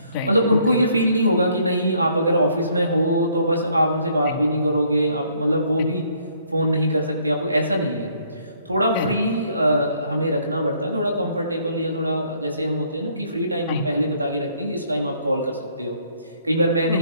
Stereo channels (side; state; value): both; inverted; correlation -0.65